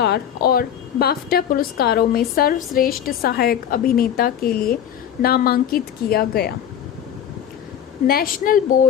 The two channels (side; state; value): right; quieter; 9.4 dB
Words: और बाफ्टा पुरस्कारों में सर्वश्रेष्ठ सहायक अभिनेता के लिए नामांकित किया गया। नेशनल